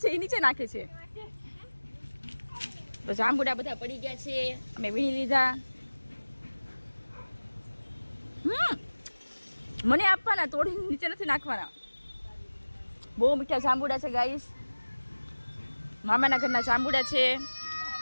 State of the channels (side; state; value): both; inverted; correlation -1.00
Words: છે, એ નીચે નાખે છે. તો જાંબુડા બધા પડી ગયા છે, અમે વીણી લીધા. મને આપવાના, તોડી નીચે નથી નાખવાના. બહુ મીઠા જાંબુડા છે ગાઈસ. મામાના ઘરના જાંબુડા છે.